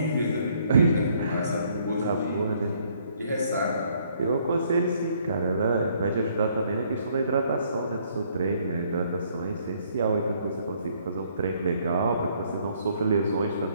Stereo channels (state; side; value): inverted; both; correlation -0.65